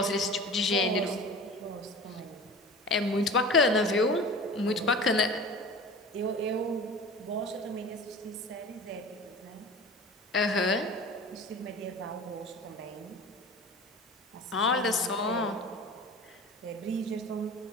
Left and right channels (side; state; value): both; normal; correlation 0.37